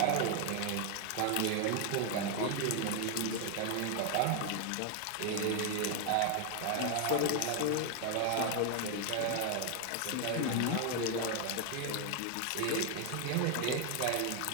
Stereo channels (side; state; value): both; different; correlation 0.01